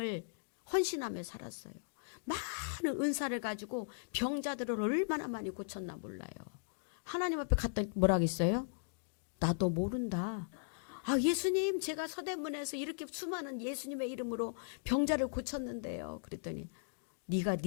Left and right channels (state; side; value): silent; right; digital silence